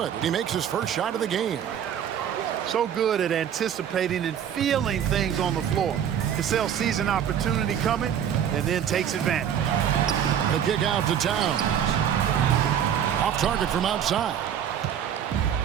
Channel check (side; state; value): left; quieter; 9.1 dB